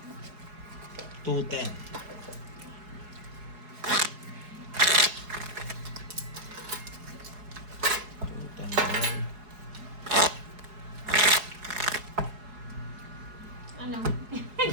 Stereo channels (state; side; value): late; left; 4.7 ms